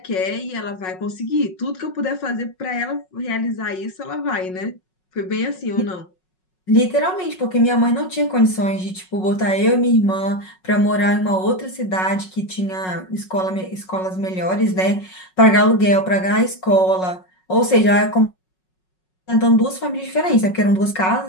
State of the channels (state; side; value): late; right; 5.4 ms